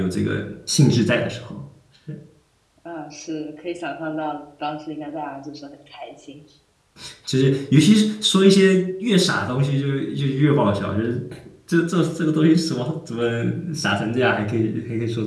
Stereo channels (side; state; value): both; identical; correlation 1.00